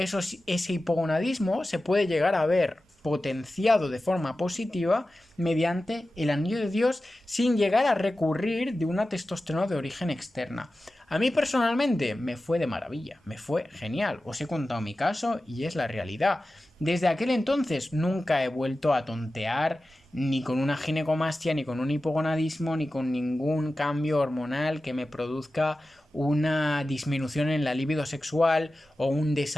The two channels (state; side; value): normal; both; correlation 0.94